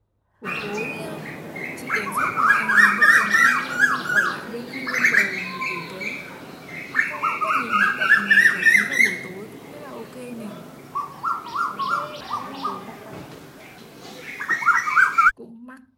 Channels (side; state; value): both; identical; correlation 1.00